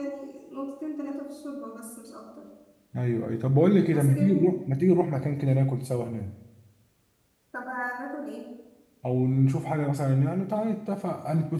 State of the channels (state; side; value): identical; both; correlation 1.00